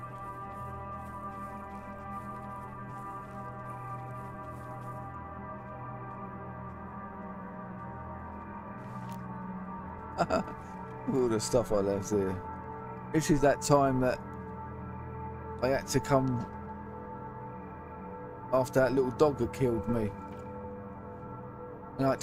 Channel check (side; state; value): both; identical; correlation 1.00